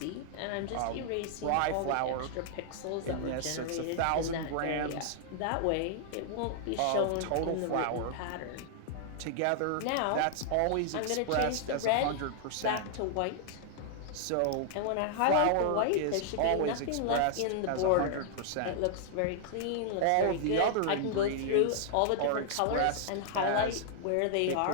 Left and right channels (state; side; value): different; both; correlation -0.01